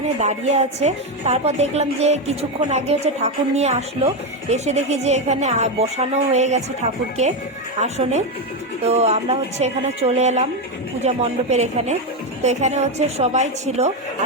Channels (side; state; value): both; normal; correlation 0.09